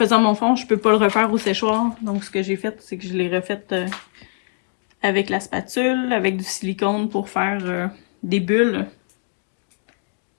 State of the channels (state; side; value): silent; right; digital silence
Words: mon fond, je peux pas le refaire au séchoir. Donc, ce que j'ai fait, c'est que je l'ai refait avec la spatule, avec du silicone pour faire des bulles.